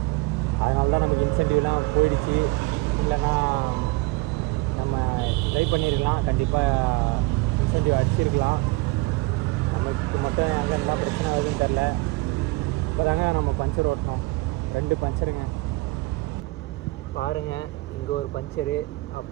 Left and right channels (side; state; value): left; quieter; 22.2 dB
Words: அதனால தான் நமக்கு இன்சென்டிவ்லாம் போயிடுச்சு. இல்லைன்னா நம்ம ட்ரை பண்ணியிருக்கலாம், கண்டிப்பாக இன்சென்டிவ் அடிச்சிருக்கலாம். நமக்கு மட்டும் எங்கே இருந்தால் பிரச்சனை ஆகுதுன்னு தெரில. இப்போ தாங்க நம்ம பஞ்சர் ஓட்டினோம். 2 பஞ்சருங்க பாருங்கள். இங்கே ஒரு பஞ்சரு,